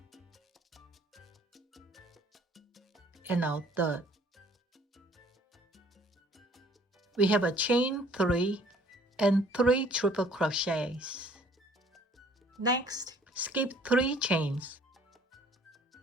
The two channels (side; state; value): both; normal; correlation 0.57